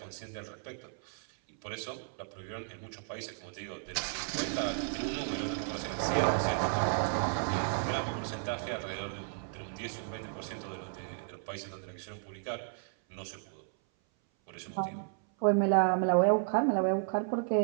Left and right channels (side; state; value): left; silent; 55 dB below the other